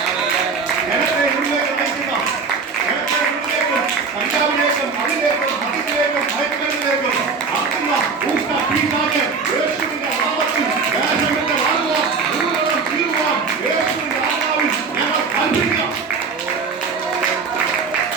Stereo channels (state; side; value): quieter; left; 4.9 dB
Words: ജനത്തെ ഉള്ളിലേക്ക് നയിക്കുന്ന, ജനത്തെ ഉള്ളിലേക്കും കഞ്ചാവിലേക്കും അതിലേക്കും മദ്യത്തിലേക്കും മയക്കുമരുന്നിലേക്കും ആക്കുന്ന ഊഷ്ണ പിശാച് യേശുവിന്റെ നാമത്തിൽ ദേശത്തിന്റെ വാഴുവാൻ മുഴുവനും തീരുവാൻ യേശുവിന്റെ ആത്മാവിൽ ഞങ്ങൾ കൽപ്പിക്കാം.